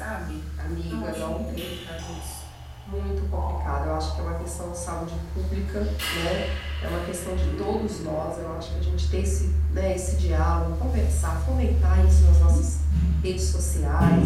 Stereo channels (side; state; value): both; identical; correlation 1.00